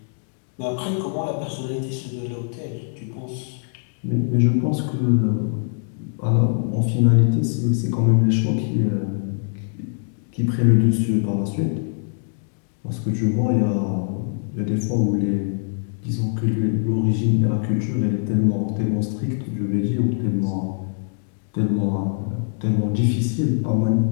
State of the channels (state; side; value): silent; right; 64 dB below the other